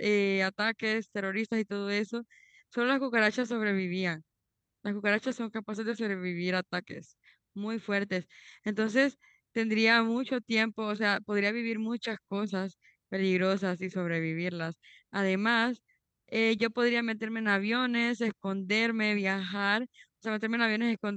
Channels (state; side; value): identical; both; correlation 1.00